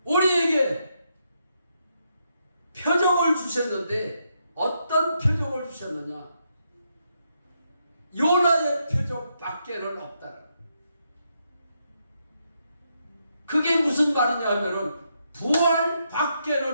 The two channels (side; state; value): both; inverted; correlation -0.79